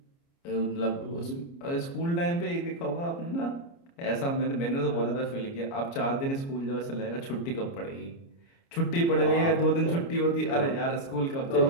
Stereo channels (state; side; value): late; right; 29 ms